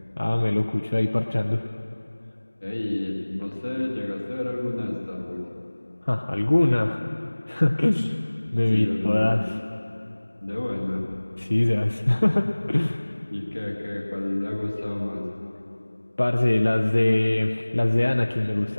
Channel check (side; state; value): both; inverted; correlation -1.00